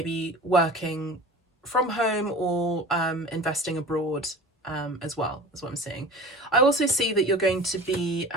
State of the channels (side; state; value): both; normal; correlation 0.38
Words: working from home or investing abroad as well, is what I'm seeing. I also see that you're going to be